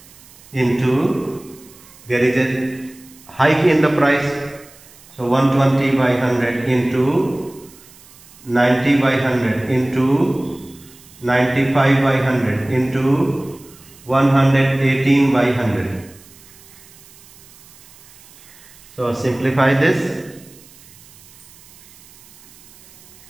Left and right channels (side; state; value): right; noise; hiss, 24 dB below the sound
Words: into, there is a hike in the price. So 120 by 100 into 90 by 100 into 95 by 100 into 118 by 100. So simplify this.